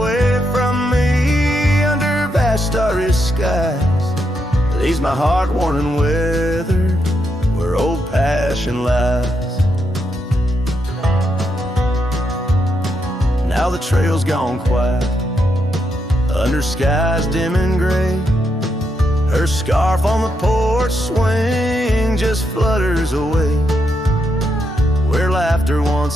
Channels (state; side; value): normal; both; correlation 0.81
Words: from me, under vast starry skies, leaves my heart worn and weathered, where old passion lies. Now the trail's gone quiet, under skies dim and gray. Her scarf on the porch swing just flutters away. Where laughter